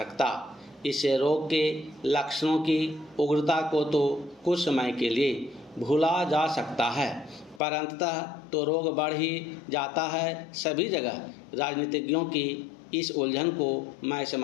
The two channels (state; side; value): drops out; right; at 7.6 s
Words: इससे रोग के लक्षणों की उग्रता को तो कुछ समय के लिए भूला जा सकता है, पर अंततः तो रोग बढ़ ही जाता है सभी जगह। राजनीतिज्ञों की इस उलझन को मैं